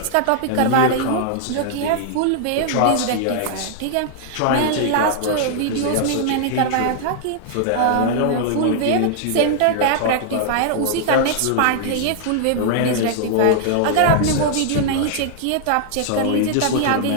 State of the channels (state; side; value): different; both; correlation -0.01